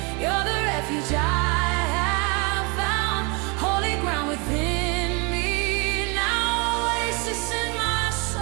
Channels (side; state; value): left; quieter; 30.8 dB